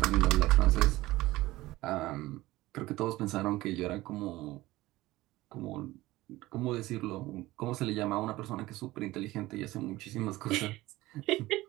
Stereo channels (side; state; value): left; quieter; 18.1 dB